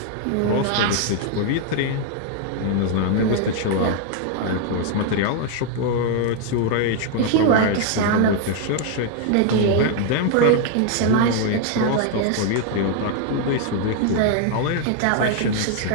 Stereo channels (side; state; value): both; different; correlation 0.00